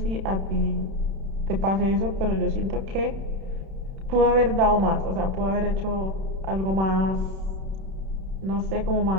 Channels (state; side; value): late; left; 31 ms